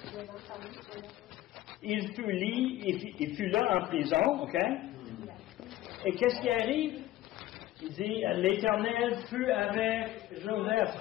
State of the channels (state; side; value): quieter; right; 15.1 dB